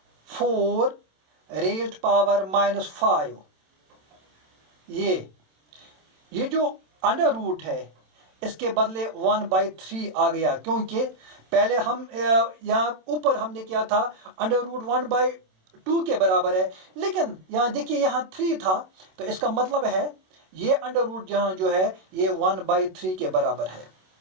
raised power -5। ये जो अंडर रूट है इसके बदले 1/3 आ गया, क्योंकि पहले हम यहाँ ऊपर हमने किया था अंडर रूट 1/2 के बराबर है, लेकिन यहाँ देखिए यहाँ 3 था, तो इसका मतलब है ये अंडर रूट यहाँ जो है ये 1/3 के बराबर है,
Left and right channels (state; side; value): late; left; 27 ms